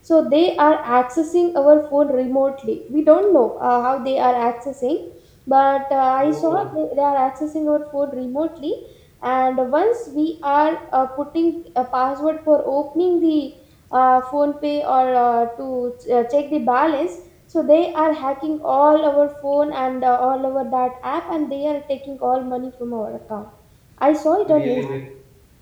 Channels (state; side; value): identical; both; correlation 1.00